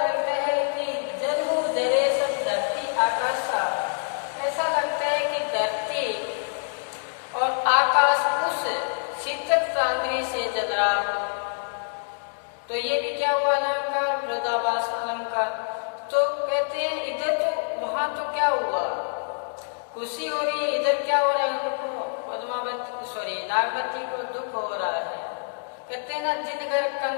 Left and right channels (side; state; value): right; silent; digital silence